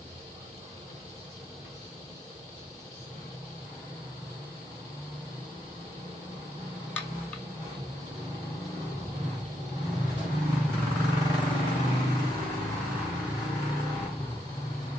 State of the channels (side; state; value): both; normal; correlation 0.80